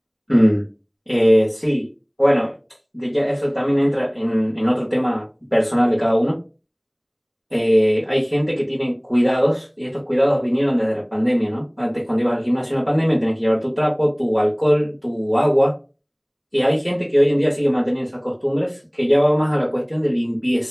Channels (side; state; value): both; identical; correlation 1.00